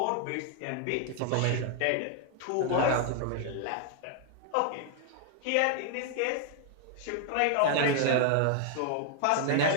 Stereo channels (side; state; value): both; different; correlation 0.00